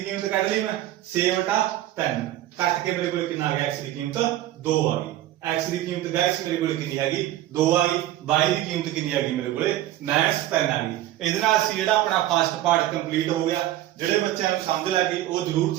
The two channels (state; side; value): quieter; left; 14.0 dB